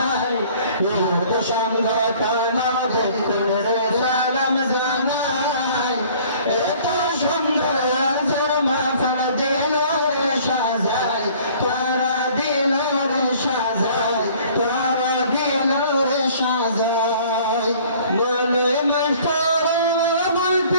ইউত সংগঠন দেখুনের সালাম জানাই এত সুন্দর মাহফিল দিল রে সাজাই তারা দিল রে সাজাই তারা দিল রে সাজাই বলে মাস্টার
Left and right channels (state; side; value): inverted; both; correlation -0.53